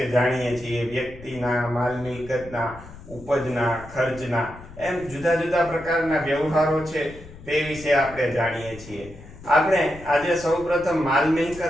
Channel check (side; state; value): left; noise; rumble, 17 dB below the sound